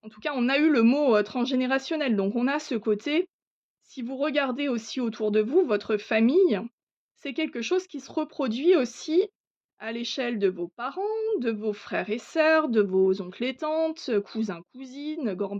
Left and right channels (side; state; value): both; identical; correlation 1.00